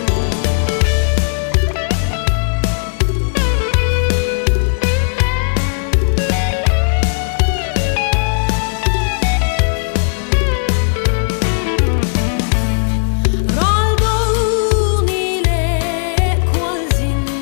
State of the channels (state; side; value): silent; right; 64 dB below the other